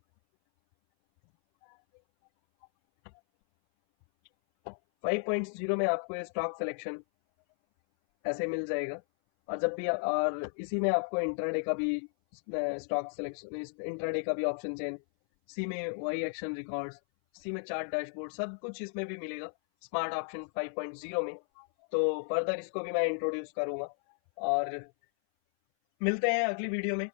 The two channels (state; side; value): silent; right; 55 dB below the other